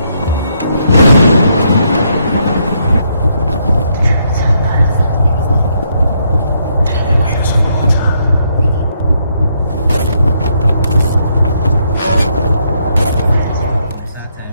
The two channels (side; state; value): both; inverted; correlation -0.75